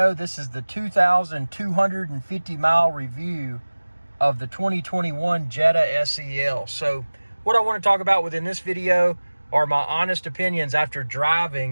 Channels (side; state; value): both; inverted; correlation -1.00